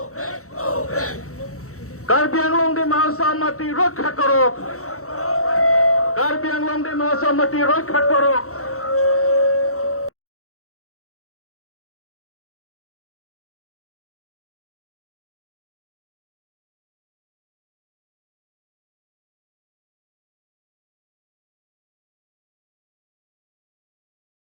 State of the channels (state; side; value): late; right; 0.64 ms